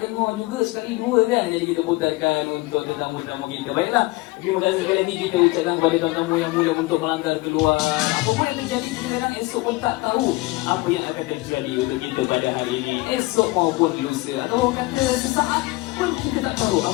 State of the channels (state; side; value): quieter; right; 21.8 dB